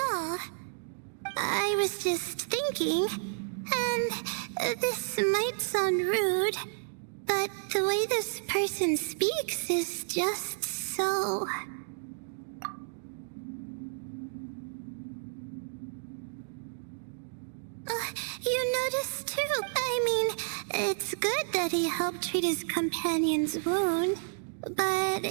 all. I was just thinking, and this might sound rude, but the way this person speaks is just so... you noticed too. I mean, it's good that he helped treat his companion's wound, but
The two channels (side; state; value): left; silent; digital silence